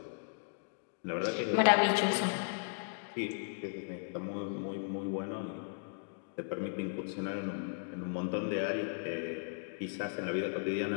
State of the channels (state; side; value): silent; right; digital silence